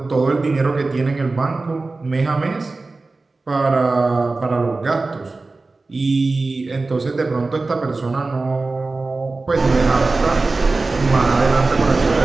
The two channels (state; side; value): quieter; left; 3.5 dB